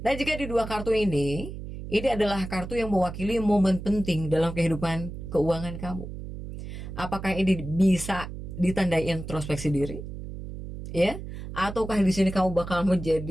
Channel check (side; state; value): right; noise; hum, 9 dB below the sound